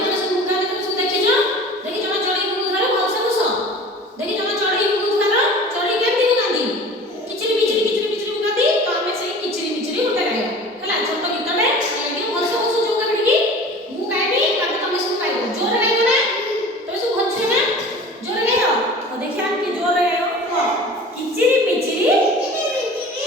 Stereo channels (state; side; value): normal; both; correlation 0.41